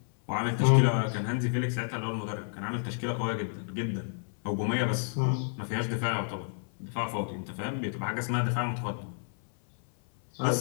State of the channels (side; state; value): right; silent; 58 dB below the other